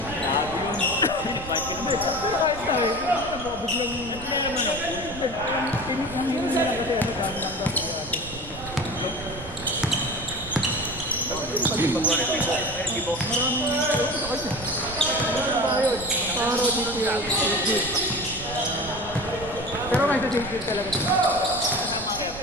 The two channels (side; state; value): right; noise; rumble, 14 dB below the sound